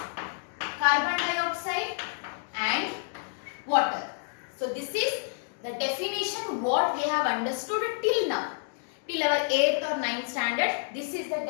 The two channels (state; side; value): silent; right; digital silence